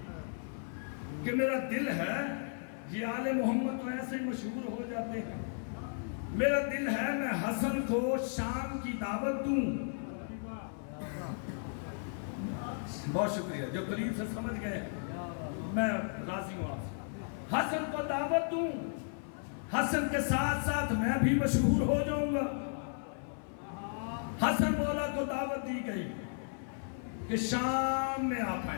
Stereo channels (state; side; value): silent; right; 55 dB below the other